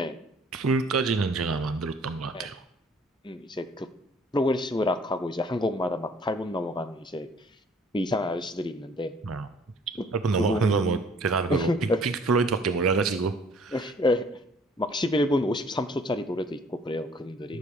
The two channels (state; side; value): normal; both; correlation 0.57